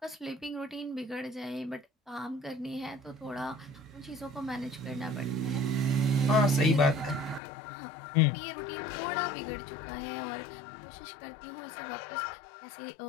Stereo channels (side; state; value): right; drops out; at 7.4 s